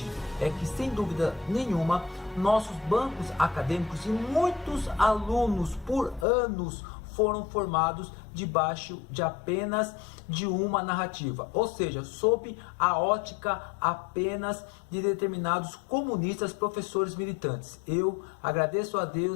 é que, sem dúvida nenhuma, nossos bancos acadêmicos e muitos alunos por anos foram formados debaixo de apenas de uma narrativa, ou seja, sob a ótica apenas de determinados comunistas, professores militantes. Eu agradeço a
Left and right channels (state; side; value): drops out; right; at 6.2 s